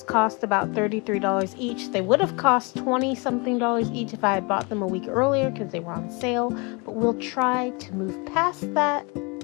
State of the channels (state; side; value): quieter; right; 30.1 dB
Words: cost about $33 each. They would have cost $20-something each if I had bought them a week earlier because they were on sale, but we'll try to move past that.